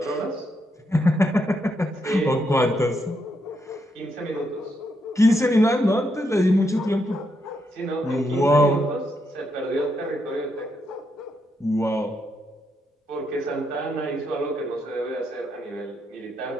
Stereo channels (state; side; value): normal; both; correlation 0.80